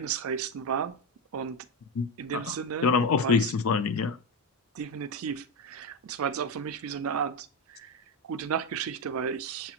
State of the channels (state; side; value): normal; both; correlation 0.12